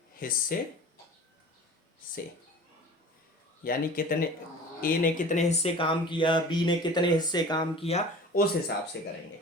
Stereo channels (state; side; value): normal; both; correlation 0.41